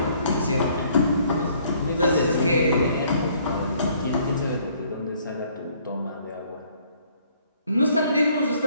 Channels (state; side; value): inverted; both; correlation -0.62